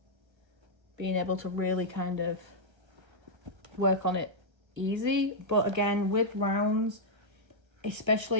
being able to really kind of work on it easy. But again, with rounds,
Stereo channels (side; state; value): left; late; 1.4 ms